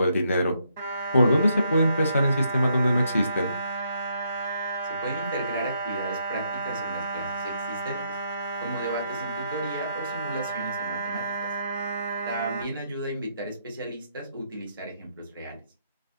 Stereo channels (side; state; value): both; inverted; correlation -0.74